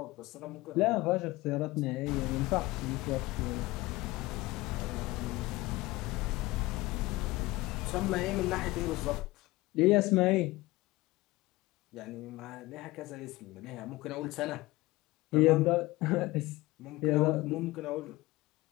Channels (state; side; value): quieter; right; 20.0 dB